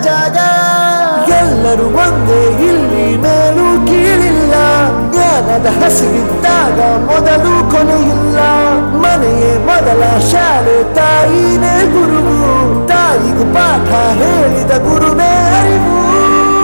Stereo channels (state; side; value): inverted; both; correlation -1.00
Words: ಜಾಗ. ಎಲ್ಲರೂ ಒಂದೇ, ಇಲ್ಲಿ ಮೇಲೂ ಕೀಳಿಲ್ಲ. ಜ್ಞಾನದ ಹಸಿವಿದ್ದಾಗ ಮೊದಲು ಕೊನೆಯಿಲ್ಲ. ಮನೆಯೇ ಮೊದಲ ಶಾಲೆ, ತಾಯಿನೇ ಗುರುವು. ತಾಯಿಗೂ ಪಾಠ ಹೇಳಿದ ಗುರುವೇ ಅರಿವು.